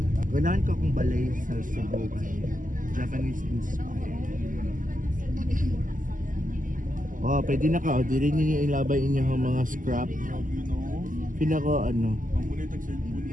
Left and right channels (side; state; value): left; late; 0.38 ms